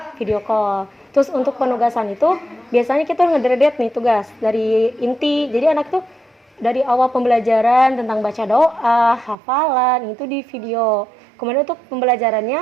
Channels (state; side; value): drops out; left; at 9.3 s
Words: video call. Terus untuk penugasan itu biasanya kita ngedredet nih tugas dari inti. Jadi anak tuh dari awal pembelajaran tentang baca doa, hafalan, itu di video. Kemudian untuk